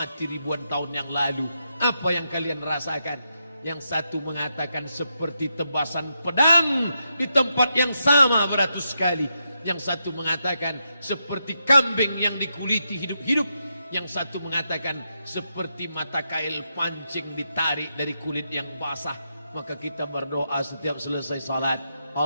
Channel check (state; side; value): inverted; both; correlation -0.83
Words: ribuan tahun yang lalu, apa yang kalian rasakan? Yang satu mengatakan seperti tebasan pedang di tempat yang sama beratus kali. Yang satu mengatakan seperti kambing yang dikuliti hidup-hidup. Yang satu mengatakan seperti mata kail pancing ditarik dari kulit yang basah. Maka kita berdoa setiap selesai salat,